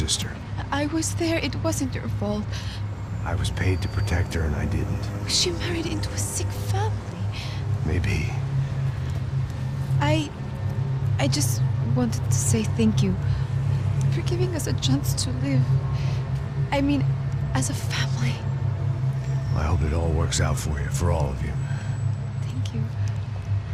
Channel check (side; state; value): both; identical; correlation 1.00